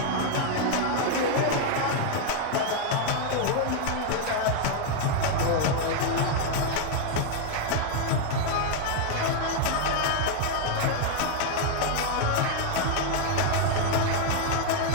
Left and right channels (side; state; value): both; different; correlation 0.01